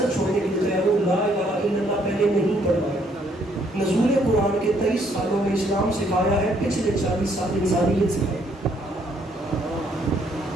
چھوڑنے کے لیے تیار ہوں، لا الہ الا اللہ پہلے نہیں پڑھوایا. نزول قرآن کے 23 سالوں میں اسلام سکھایا ہے، پچھلے 40 سال انسانیت سکھائی.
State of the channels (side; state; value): both; normal; correlation 0.68